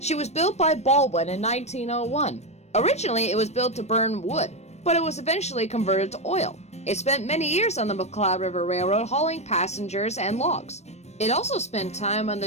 was built by Baldwin in 1901. Originally, it was built to burn wood, but it was eventually converted to oil. It spent many years on the McCloud River Railroad hauling passengers and logs. It also spent time on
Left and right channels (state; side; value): late; right; 0.32 ms